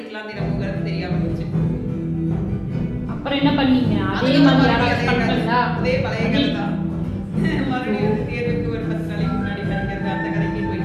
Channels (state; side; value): identical; both; correlation 1.00